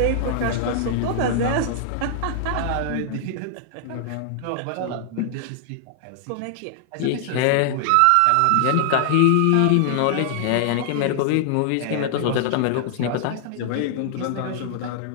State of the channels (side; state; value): both; different; correlation -0.01